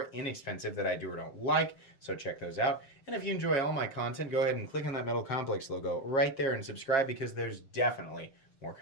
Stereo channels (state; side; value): late; right; 7.4 ms